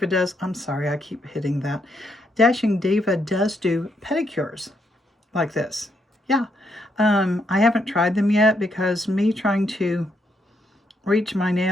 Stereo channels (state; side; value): normal; both; correlation 0.77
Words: does, I'm sorry, I keep hitting that. Dashing Diva does do pedicures like this. Yeah, I haven't tried them yet because me trying to reach my